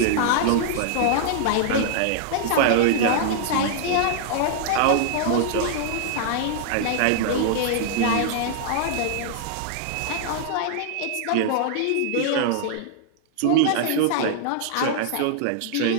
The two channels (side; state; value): both; different; correlation -0.01